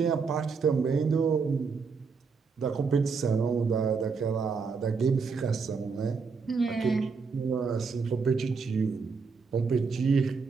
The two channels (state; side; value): quieter; left; 5.1 dB